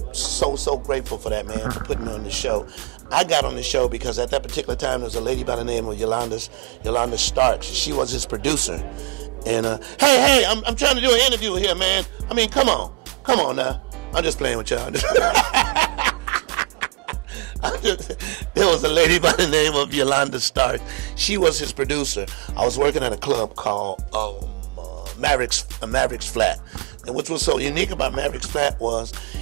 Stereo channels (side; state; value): left; quieter; 30.0 dB